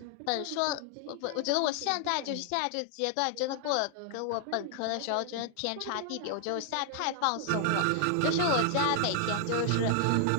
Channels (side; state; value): both; different; correlation 0.00